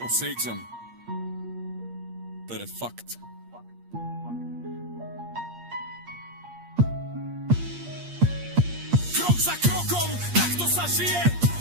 cítim. To je fakt. Krok za krokom, takto sa žije,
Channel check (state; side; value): late; left; 8.5 ms